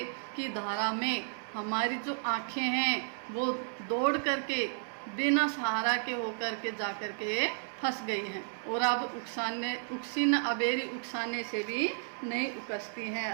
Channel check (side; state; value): left; silent; 56 dB below the other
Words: की धारा में हमारी जो आँखें हैं वो दौड़ करके बिना सहारा के होकर के जाकर के फंस गई हैं और अब उकसी न अबेरी उकसाने से भी नहीं उकसती हैं,